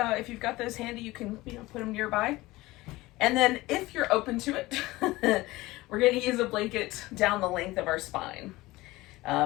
If you've got those handy, you can put them nearby. And then if you're open to it, we're going to use a blanket down the length of our spine.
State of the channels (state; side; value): quieter; right; 19.5 dB